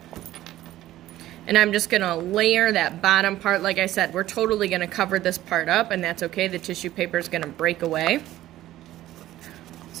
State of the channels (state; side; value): quieter; left; 14.5 dB